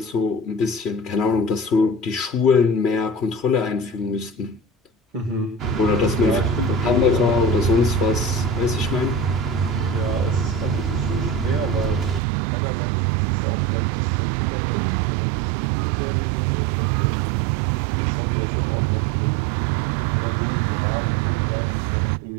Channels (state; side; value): drops out; left; at 12.2 s